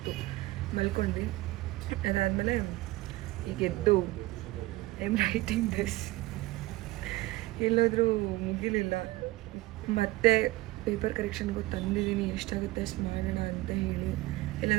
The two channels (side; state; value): left; quieter; 18.9 dB